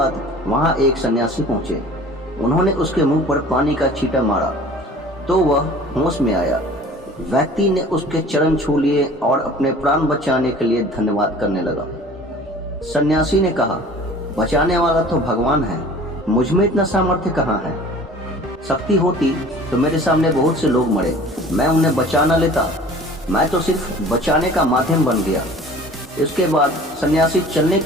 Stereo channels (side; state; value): both; normal; correlation 0.45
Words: वहां एक सन्यासी पहुंचे। उन्होंने उसके मुंह पर पानी का छींटा मारा तो वह होश में आया। व्यक्ति ने उसके चरण छू लिए और अपने प्राण बचाने के लिए धन्यवाद करने लगा। सन्यासी ने कहा, बचाने वाला तो भगवान है, मुझ में इतना सामर्थ्य कहाँ है। शक्ति होती तो मेरे सामने बहुत से लोग मरे, मैं उन्हें बचा न लेता। मैं तो सिर्फ बचाने का माध्यम बन गया। इसके बाद सन्यासी चलने